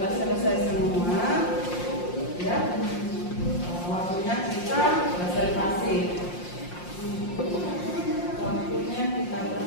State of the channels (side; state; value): right; late; 5.7 ms